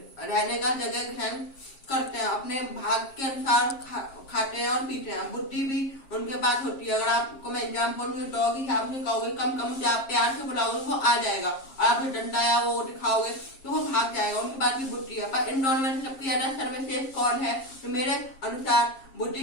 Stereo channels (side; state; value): right; late; 7.5 ms